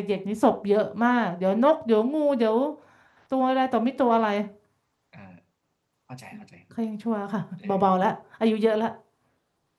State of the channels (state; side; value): identical; both; correlation 1.00